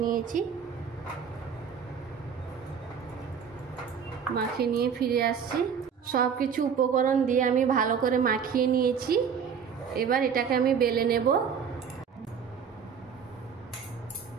নিয়েছি। মাখিয়ে নিয়ে ফিরে আসছি। সব কিছু উপকরণ দিয়ে আমি ভালো করে মাখিয়ে নিয়েছি। এবার এটাকে আমি বেলে নেব।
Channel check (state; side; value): quieter; left; 6.9 dB